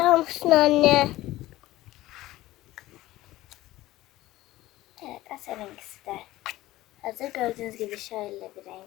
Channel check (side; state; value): right; quieter; 16.7 dB